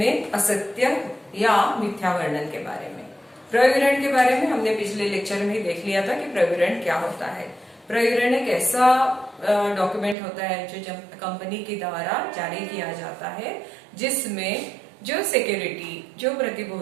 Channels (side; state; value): left; drops out; at 10.2 s